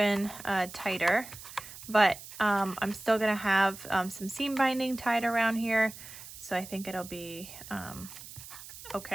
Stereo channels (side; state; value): right; noise; hiss, 15 dB below the sound